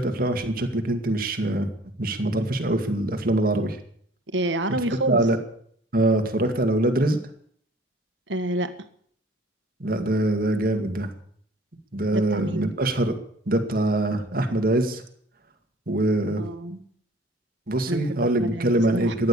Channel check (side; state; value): both; normal; correlation 0.52